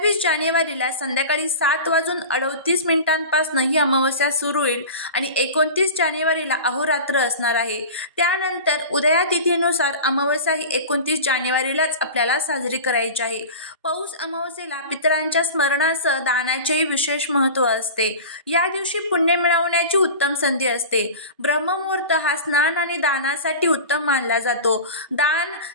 जानेवारीला संध्याकाळी 7:38 ही अमावस्या सुरू होईल आणि 29 जानेवारीला अहोरात्र असणार आहे। त्यानंतर उदया तिथीनुसार अमावस्या ही 29 जानेवारीलाच आपल्याला साजरी करायची आहे। पौष अमावस्येला पितरांच्या स्मरणासह दानाचेही विशेष महत्त्व असते। या दिवशी पुण्य मिळवण्याची उत्तम संधी असते। ब्रह्ममुहूर्त हा स्नान आणि दानासाठी उत्तम मानला जातो। दान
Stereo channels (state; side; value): inverted; both; correlation -0.32